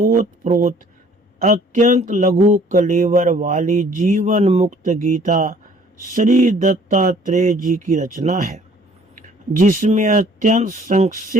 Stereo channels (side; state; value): both; normal; correlation 0.56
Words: अत्यंत लघु कलेवर वाली जीवन मुक्त गीता श्री दत्तात्रेय जी की रचना है, जिसमें अत्यंत